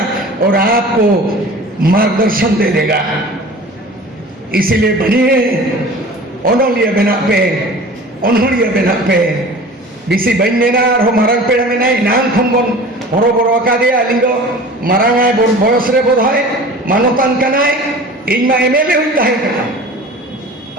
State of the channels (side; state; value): both; normal; correlation 0.40